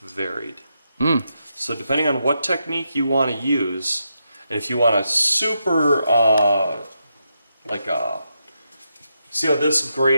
varied. So depending on what technique you want to use, and if you want a super, see how this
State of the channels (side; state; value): both; inverted; correlation -0.84